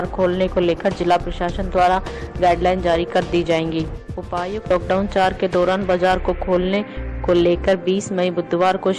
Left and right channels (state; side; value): identical; both; correlation 1.00